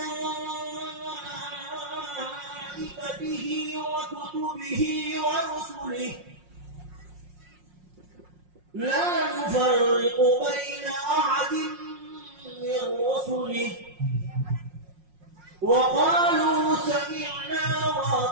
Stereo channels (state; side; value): late; left; 5.6 ms